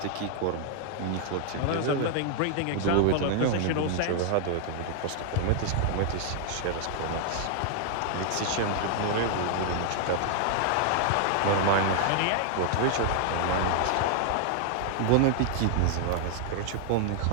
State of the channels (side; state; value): both; different; correlation 0.00